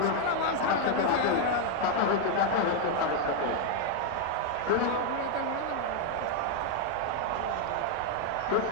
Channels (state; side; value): different; both; correlation 0.00